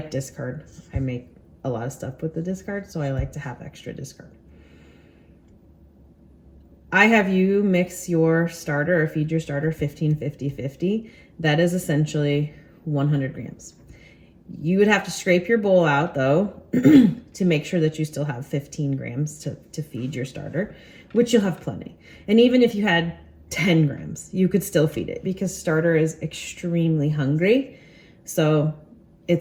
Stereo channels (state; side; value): identical; both; correlation 1.00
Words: discard. I make a lot of stuff with the discard, so I like to have extra discard. I have you mix your starter or feed your starter 15, 50, 50. That is essentially 100 grams. You would have to scrape your bowl out though to make sure that you still have 15 grams to feed your starter, which you'll have plenty. And even if you had 10 grams, you could still feed it because starter is extremely hungry. So